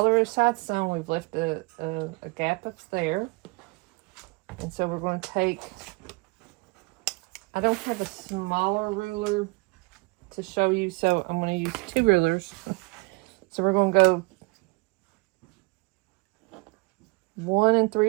our sides sewn, we've left a gap up there. And so we're going to take, I don't have a smaller ruler to show you, so I'm going to use 2 rulers. So we're going to go 1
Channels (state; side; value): quieter; left; 27.7 dB